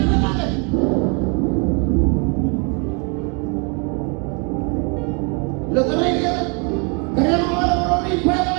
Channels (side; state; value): left; quieter; 35.1 dB